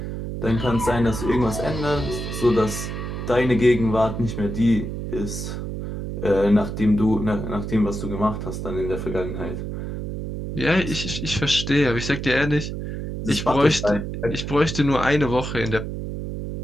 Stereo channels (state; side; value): noise; right; hum, 5 dB below the sound